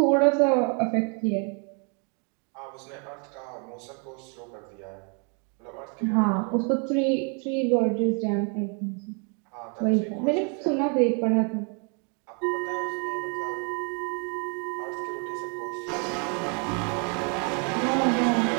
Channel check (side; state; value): left; quieter; 37.9 dB